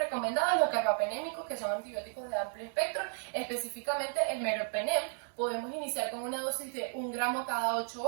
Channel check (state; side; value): silent; left; 56 dB below the other